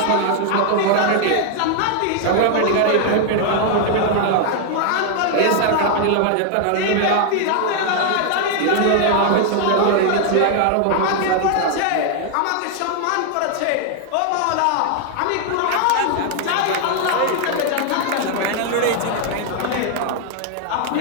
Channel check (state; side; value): different; both; correlation 0.00